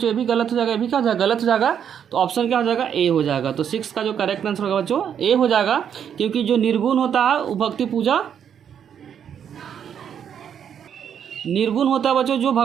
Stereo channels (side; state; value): left; quieter; 8.5 dB